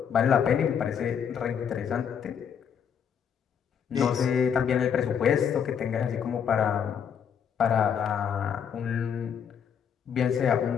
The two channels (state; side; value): quieter; right; 7.7 dB